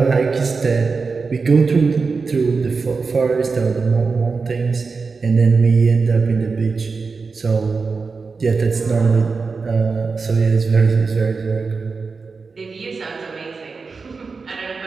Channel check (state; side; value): quieter; left; 4.6 dB